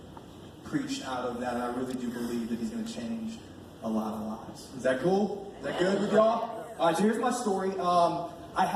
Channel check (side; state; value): both; identical; correlation 1.00